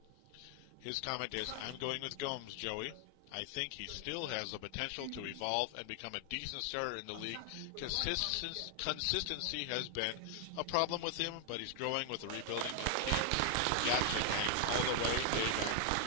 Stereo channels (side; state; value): both; different; correlation 0.00